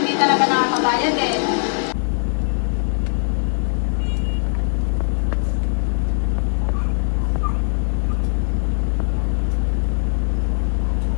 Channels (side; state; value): right; silent; digital silence